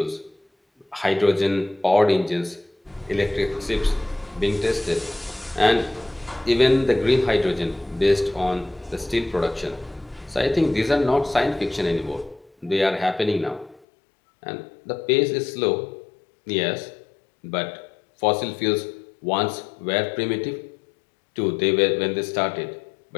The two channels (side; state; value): right; drops out; at 13.8 s